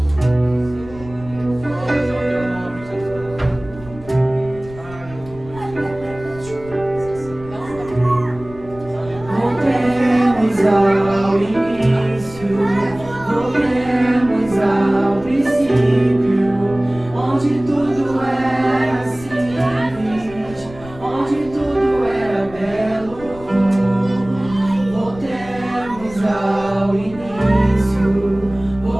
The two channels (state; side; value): noise; left; rumble, 18 dB below the sound